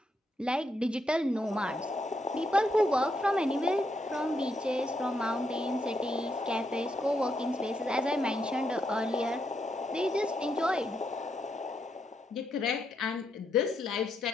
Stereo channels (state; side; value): normal; both; correlation 0.79